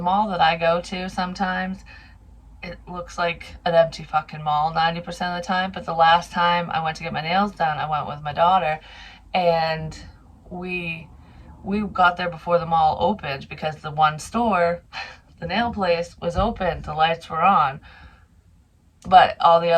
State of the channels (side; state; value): both; identical; correlation 1.00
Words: that I go to sometimes, it looks like an empty fucking mall 90% of the time. But the last time I went to get my nails done, I went with my daughter, and we we got there before the mall opened, because the one store, the nail place, was open, the lights were on, but all the